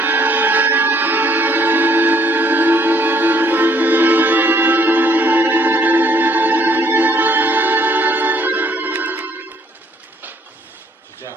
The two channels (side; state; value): both; normal; correlation 0.65